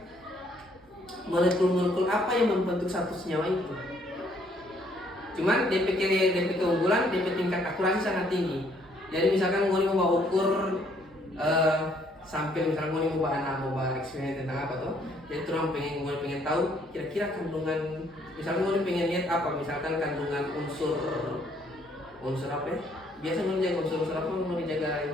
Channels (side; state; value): both; normal; correlation 0.66